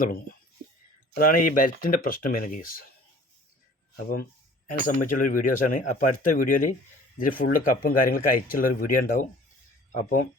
തുടങ്ങും. അതാണ് ഈ ബെൽറ്റിൻ്റെ പ്രശ്നം വരുന്ന കേസ്. അപ്പം അതിനെ സംബന്ധിച്ചുള്ളൊരു വീഡിയോസാണ്. അപ്പോൾ അടുത്ത വീഡിയോയിൽ ഇതിൽ ഫുള്ള് കപ്പും കാര്യങ്ങളൊക്കെ അയച്ചുള്ളൊരു വീഡിയോ ഉണ്ടാവും. അപ്പം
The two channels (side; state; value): both; normal; correlation 0.49